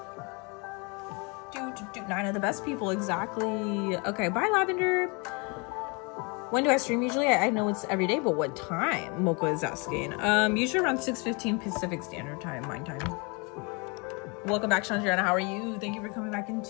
9 of the best people, exactly. Okay, bye, Lavender. When do I stream usually? I know it's every day, but what time? Mocha is asking. Usually around 6:15 Pacific Standard Time, mine time. Welcome back, Chandriana. How are you? Thank you for coming back in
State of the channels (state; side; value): quieter; right; 31.0 dB